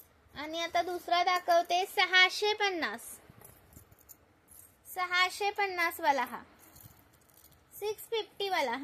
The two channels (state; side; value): identical; both; correlation 1.00